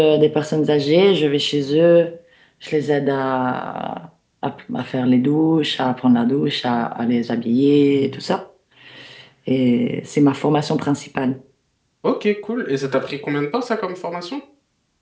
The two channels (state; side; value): identical; both; correlation 1.00